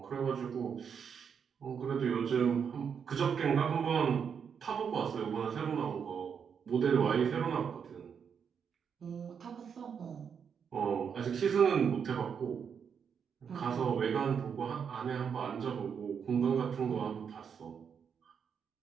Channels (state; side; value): quieter; left; 7.0 dB